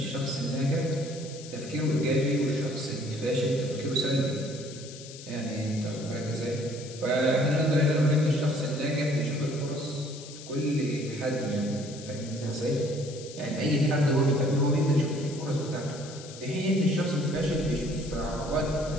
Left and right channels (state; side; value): noise; left; hiss, 15 dB below the sound